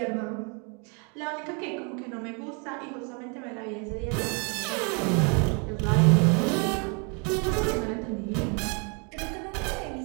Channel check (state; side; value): quieter; left; 35.1 dB